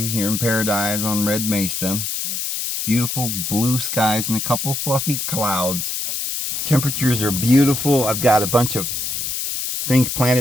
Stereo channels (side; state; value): left; noise; hiss, 3 dB below the sound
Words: here in paradise on Red Mesa. Beautiful blue skies and a couple fluffy clouds. Temperatures are beautiful. I've got a bunch of things